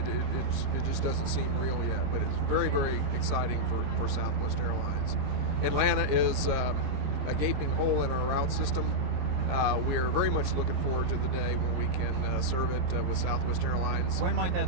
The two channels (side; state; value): left; late; 24 ms